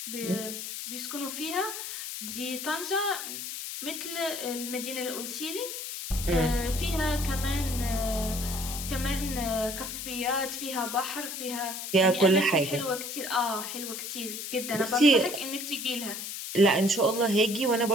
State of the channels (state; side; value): noise; left; hiss, 6 dB below the sound